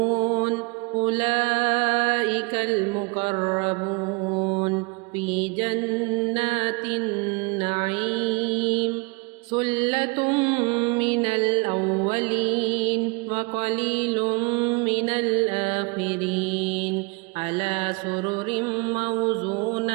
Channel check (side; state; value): left; quieter; 29.0 dB